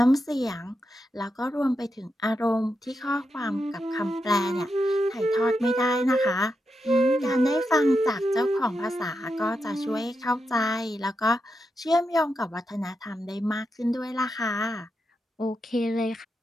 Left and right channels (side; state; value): both; normal; correlation 0.86